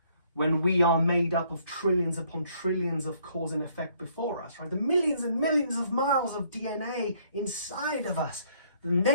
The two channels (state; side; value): inverted; both; correlation -0.65